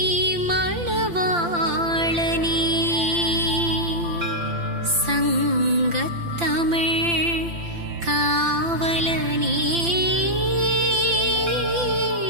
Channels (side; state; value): left; late; 5.8 ms